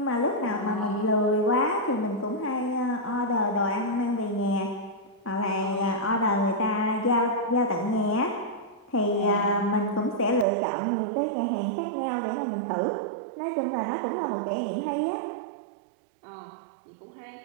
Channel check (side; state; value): left; drops out; at 10.5 s